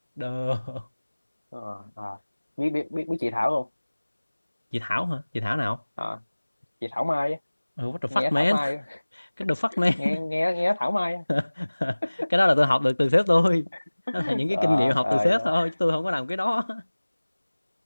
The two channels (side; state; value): both; inverted; correlation -1.00